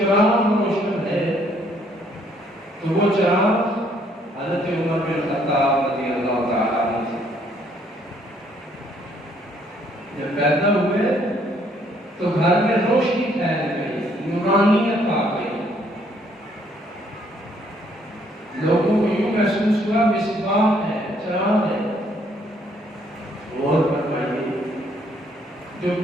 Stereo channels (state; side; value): normal; both; correlation 0.66